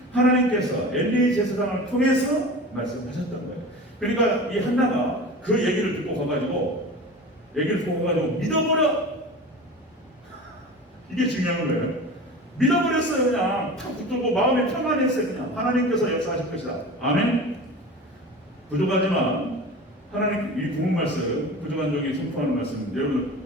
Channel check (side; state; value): both; normal; correlation 0.34